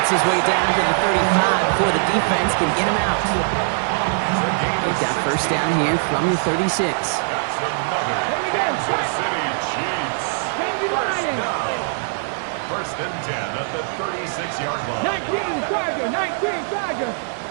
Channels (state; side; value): silent; left; 65 dB below the other